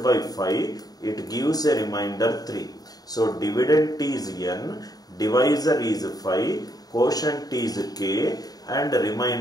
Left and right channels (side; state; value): right; late; 0.18 ms